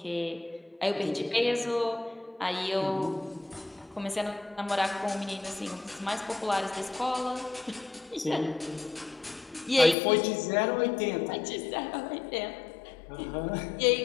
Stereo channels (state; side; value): drops out; right; at 10.0 s